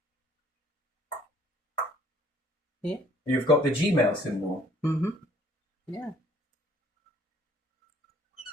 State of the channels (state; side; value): normal; both; correlation 0.59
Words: Yeah. You've got the Gmail symbol. Mm-hmm. Yeah.